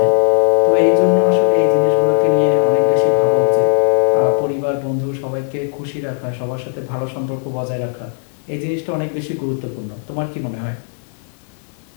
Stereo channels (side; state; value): right; silent; digital silence